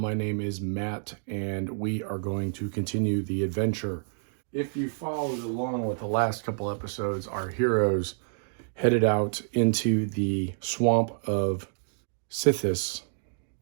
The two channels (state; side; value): silent; left; digital silence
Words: name is Matt, and we are going to continue the adventure. If you followed along with the last couple episodes, our heroes headed out into the swamp of Sithis